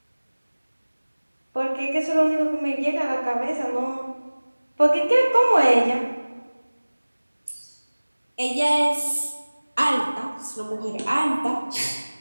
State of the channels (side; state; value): both; inverted; correlation -1.00